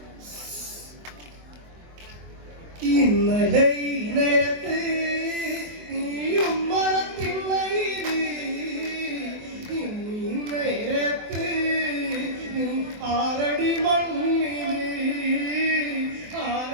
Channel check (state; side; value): late; left; 24 ms